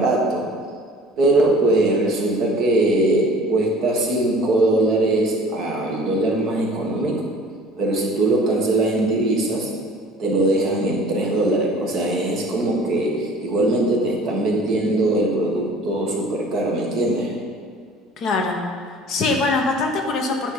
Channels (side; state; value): both; normal; correlation 0.47